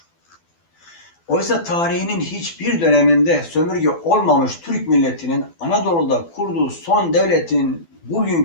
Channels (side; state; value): right; late; 12 ms